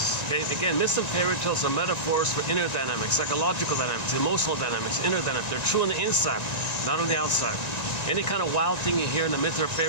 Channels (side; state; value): right; late; 1.9 ms